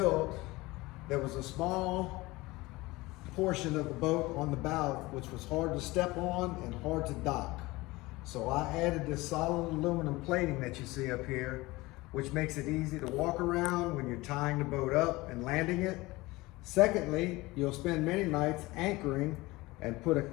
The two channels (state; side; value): quieter; right; 21.0 dB